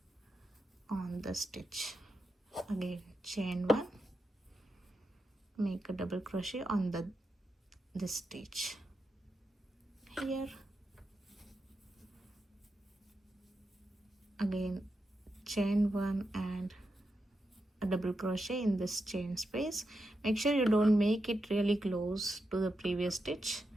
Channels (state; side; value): normal; both; correlation 0.87